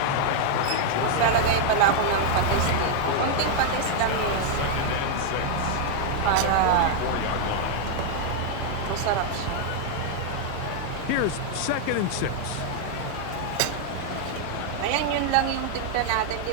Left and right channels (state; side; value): different; both; correlation 0.00